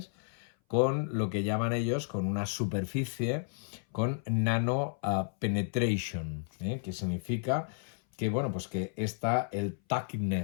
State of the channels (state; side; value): silent; right; 56 dB below the other